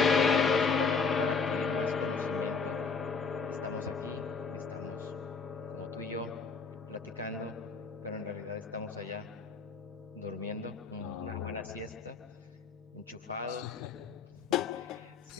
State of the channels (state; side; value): quieter; right; 5.0 dB